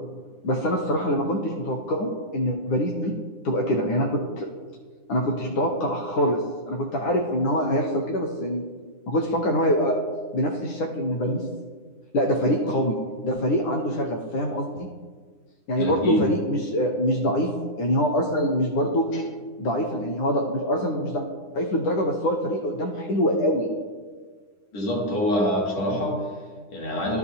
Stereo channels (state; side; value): late; right; 9.9 ms